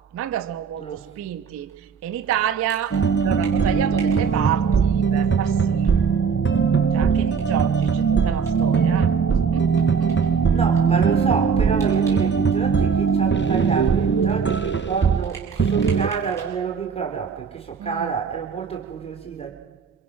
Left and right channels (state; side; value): quieter; left; 6.1 dB